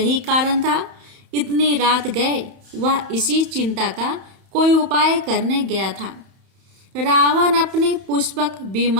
कारण था। इतनी रात गए वह इसी चिंता का कोई उपाय करने गया था। रावण अपने पुष्पक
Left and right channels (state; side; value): late; left; 31 ms